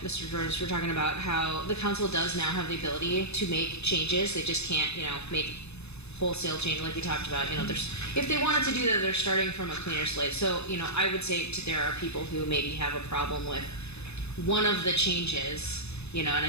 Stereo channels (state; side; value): late; right; 0.80 ms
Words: Mr. George. We're talking about how the council does now have the ability to make changes. They just can't, make wholesale change like we talked about. If they wanted to do that, they're starting from a cleaner slate. So, I would say there are people who maybe have a problem with one of the changes, and